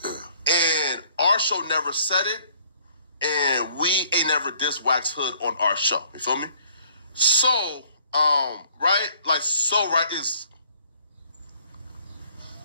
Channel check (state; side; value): inverted; both; correlation -0.62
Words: And our show never said it, and we ain't never dissed Wack's Hood on our show. You feel me? So right? Like, so, right, is